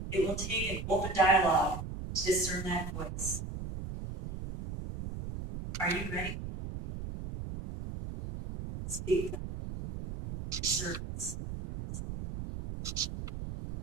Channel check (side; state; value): right; noise; rumble, 7 dB below the sound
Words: It will take an open dialogue to discern that voice. Are you ready?